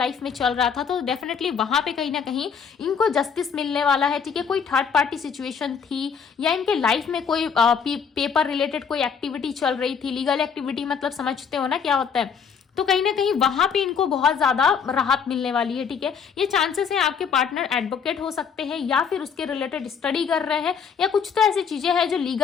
में चल रहा था, तो डेफिनेटली वहां पे कहीं ना कहीं इनको जस्टिस मिलने वाला है। ठीक है, कोई थर्ड पार्टी सिचुएशन थी या इनके लाइफ में कोई पेपर रिलेटेड कोई एक्टिविटी चल रही थी, लीगल एक्टिविटी मतलब समझते हो ना क्या होता है। तो कहीं ना कहीं वहां पे इनको बहुत ज्यादा राहत मिलने वाली है, ठीक है। ये चांसेस है आपके पार्टनर एडवोकेट हो सकते हैं या फिर उसके रिलेटेड स्टडी कर रहे हैं, या कुछ तो ऐसी चीजें हैं जो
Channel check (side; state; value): right; quieter; 6.7 dB